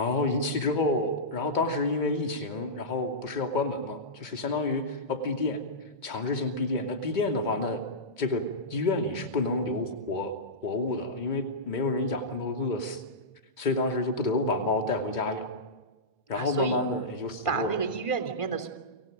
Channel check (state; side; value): late; right; 2.2 ms